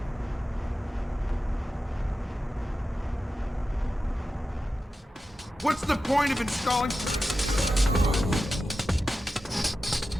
What's the point of installing...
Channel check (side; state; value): both; normal; correlation 0.92